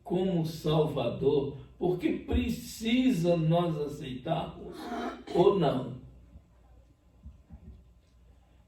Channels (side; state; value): both; identical; correlation 1.00